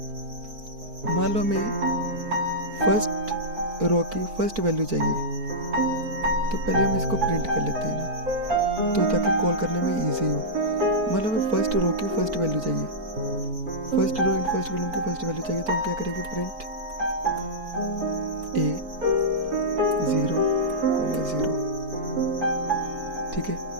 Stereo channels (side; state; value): left; late; 4.5 ms